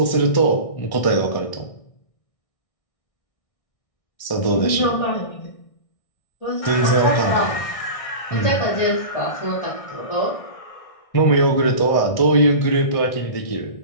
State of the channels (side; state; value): right; late; 1.6 ms